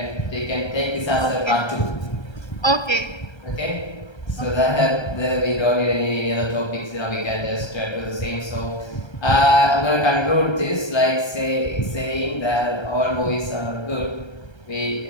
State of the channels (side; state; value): right; late; 1.3 ms